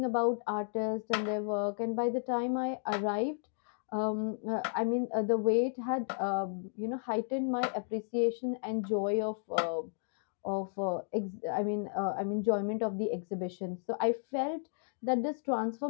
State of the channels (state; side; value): silent; right; digital silence